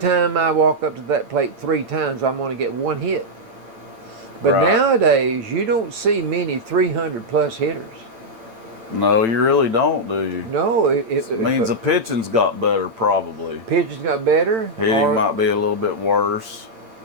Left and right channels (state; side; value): late; left; 8.9 ms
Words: I walk up to that plate 3 times, I'm going to get 1 hit. But Right. nowadays, you don't see many 300 plus hitters. No, you really don't, do you? No, It means the pitching's got better, probably. pitchers got better. Hitting might be a little bit worse.